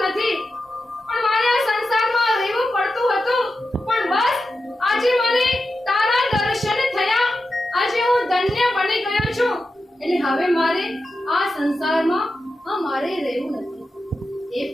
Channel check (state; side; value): normal; both; correlation 0.90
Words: નથી, પણ મારે આ સંસારમાં રહેવું પડતું હતું. પણ બસ આજે મને તારા દર્શન થયા. આજે હું ધન્ય બની ગયો છું. એટલે હવે મારે આ સંસારમાં મારે રહેવું નથી. હે